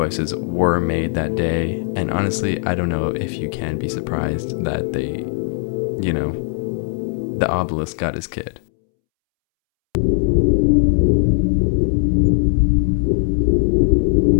were made that day, and honestly, I don't know if you can be surprised that the obelisk got his kid.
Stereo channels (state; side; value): silent; right; 67 dB below the other